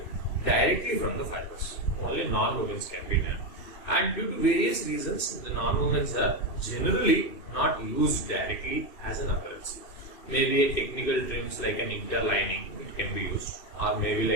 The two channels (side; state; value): right; late; 2.6 ms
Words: directly from the fibers. Only non-wovens can be done, and due to various reasons, the non-wovens are generally not used directly as an apparel. Maybe a technical trims like an interlining, it can be used, or maybe